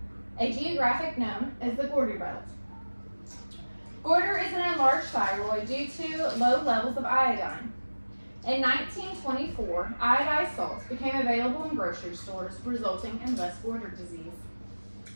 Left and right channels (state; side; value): inverted; both; correlation -1.00